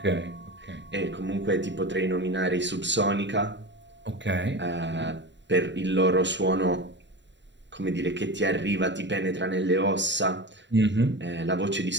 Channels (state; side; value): late; left; 0.52 ms